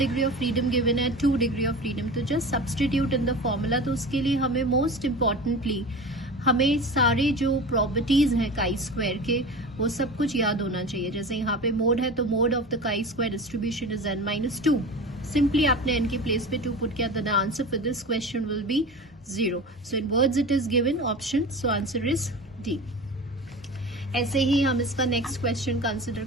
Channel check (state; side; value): normal; both; correlation 0.33